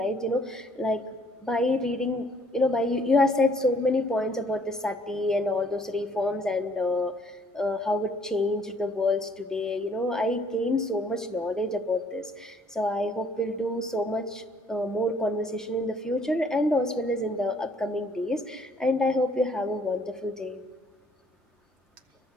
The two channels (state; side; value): normal; both; correlation 0.62